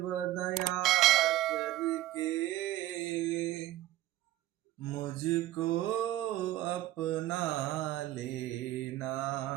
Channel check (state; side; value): quieter; left; 14.9 dB